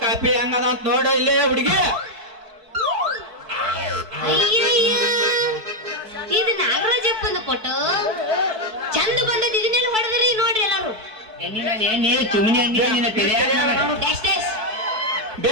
ಕಾಪಿ ಹೆಂಗದ ಅಂತ ನೋಡ ಇಲ್ಲೇ ಹುಡುಗಿ. ಇದು ನಾಗರಾಜಪ್ಪಂದು ಫೋಟೋ ಚಂದ ಬಂದದ. ಇದನ್ನೆಲ್ಲ ಹೊಡೆದ್ರಿ ನೋಡ್ರಿ ಎಲ್ಲಾರು.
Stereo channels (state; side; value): late; left; 4.6 ms